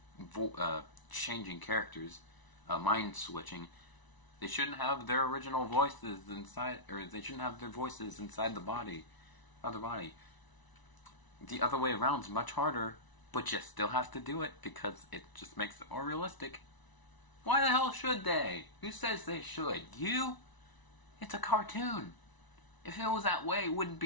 changing characters, mind switching, they shouldn't have their original voices inside, or they shouldn't have their voices inside the body, other body. The other way around is much harder, but you still have to do it because it just makes it more realistic. Why the hell should they? Who says they should? You? It's a cartoon. If it was that way, it wouldn't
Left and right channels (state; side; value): late; right; 1.0 ms